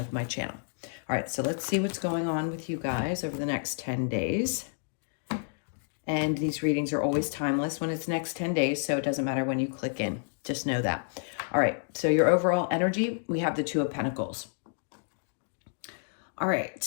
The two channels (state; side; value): silent; right; digital silence